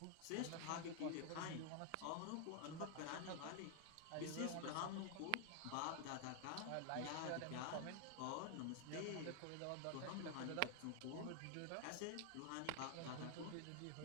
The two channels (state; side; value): different; both; correlation 0.00